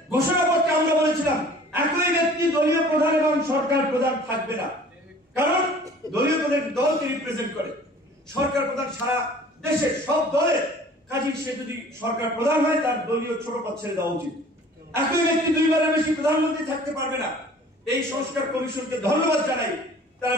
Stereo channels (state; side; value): normal; both; correlation 0.49